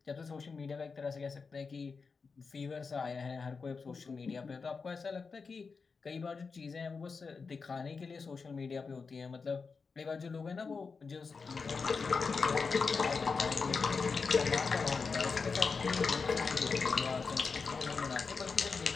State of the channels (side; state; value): right; quieter; 4.9 dB